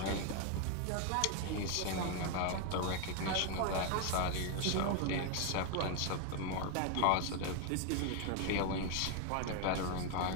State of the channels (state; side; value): different; both; correlation 0.01